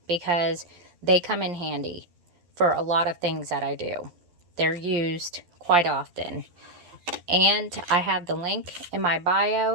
because they come in handy for a lot of things that I do. They're used quite often. And I have the link in my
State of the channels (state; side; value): late; left; 11 ms